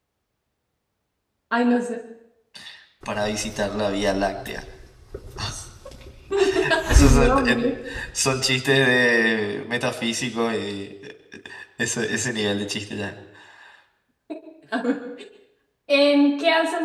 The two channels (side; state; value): both; identical; correlation 1.00